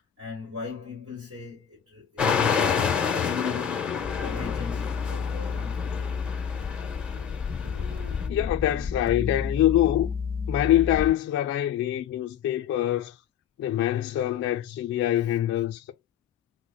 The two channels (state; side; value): quieter; right; 9.1 dB